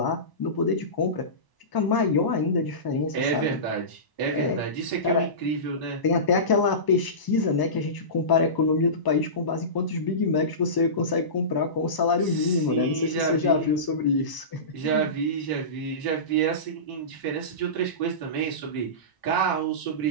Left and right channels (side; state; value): right; late; 1.0 ms